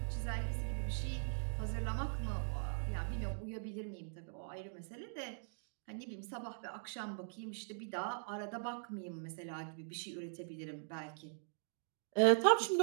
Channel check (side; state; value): left; silent; digital silence